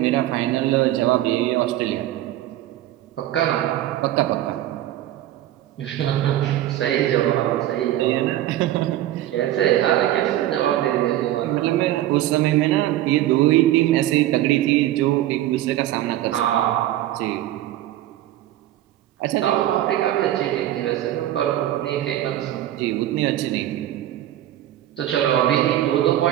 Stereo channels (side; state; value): left; quieter; 13.6 dB